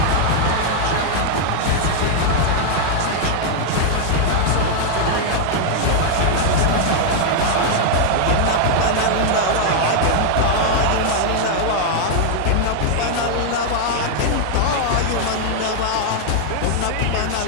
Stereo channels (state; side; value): different; both; correlation 0.00